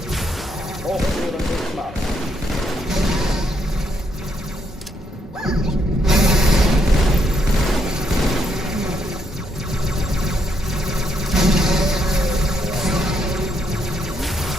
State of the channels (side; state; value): both; normal; correlation 0.76